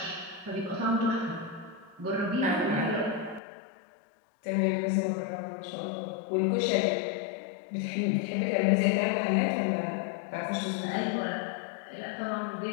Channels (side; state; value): right; drops out; at 3.4 s